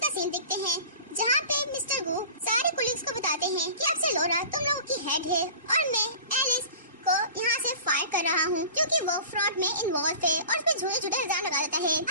सीन देखते हैं जहाँ पे मिस्टर गु सारे कोलिग्स को बताते हैं कि अब से लोरा तुम लोगों की हेड है और मैं एलिस को यहाँ से फायर कर रहा हूँ क्योंकि वो फ्रॉड में इन्वॉल्व थे, और उसपे झूठे झूठे इल्जाम लगा देता है।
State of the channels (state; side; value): inverted; both; correlation -0.40